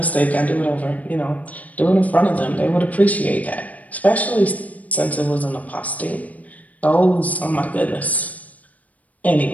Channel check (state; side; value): late; right; 0.072 ms